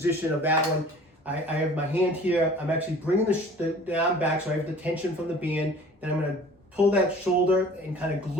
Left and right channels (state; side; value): normal; both; correlation 0.47